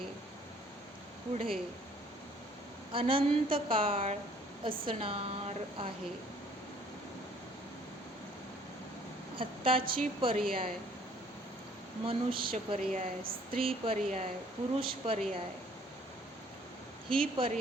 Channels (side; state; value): both; normal; correlation 0.59